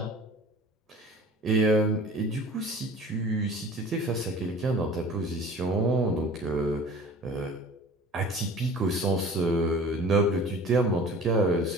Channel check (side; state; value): both; normal; correlation 0.43